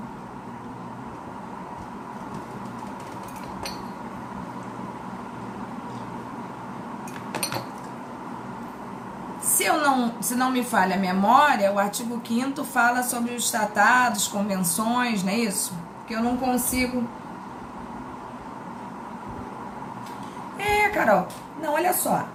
Se não me falha a memória, o artigo 5º fala sobre os tratados, convenções, não é isso? Que eu não consigo... Carol, não, olha só.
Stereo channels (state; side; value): identical; both; correlation 1.00